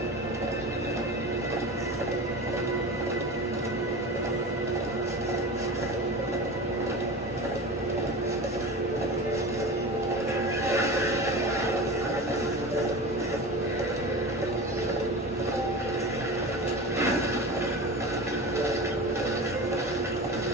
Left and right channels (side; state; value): both; normal; correlation 0.30